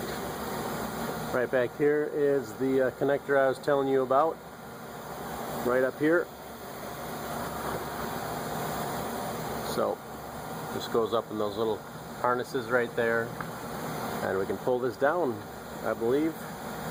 Right back here is the connector I was telling you about. Right up here. So this goes up in those little harnesses right there, and we can pull this down, I believe.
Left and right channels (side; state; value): both; identical; correlation 1.00